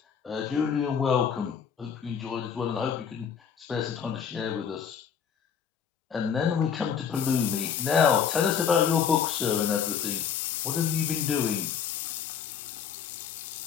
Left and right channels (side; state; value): right; quieter; 7.5 dB